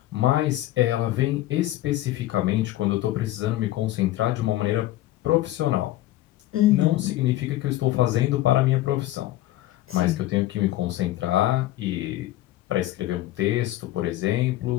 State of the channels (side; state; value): right; quieter; 15.6 dB